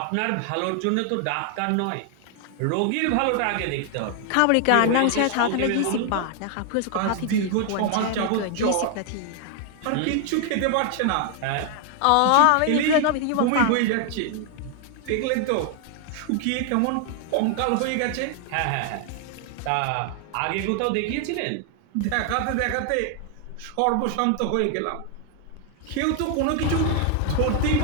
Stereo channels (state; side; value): different; both; correlation 0.00